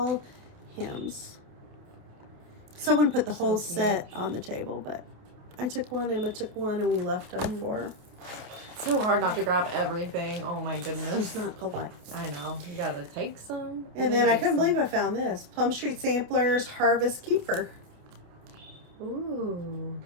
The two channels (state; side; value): late; left; 28 ms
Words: hymns. Someone put the whole set on the table, but I took one, Emma took one, and we left them for her. So hard not to grab everything. Oh my goodness. It's not polite. I know. You gotta take some. And then I couldn't believe I found this. Plum Street Samplers Harvest Keeper. Ooh.